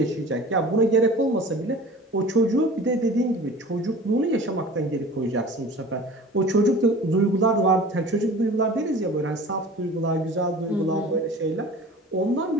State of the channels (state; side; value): normal; both; correlation 0.41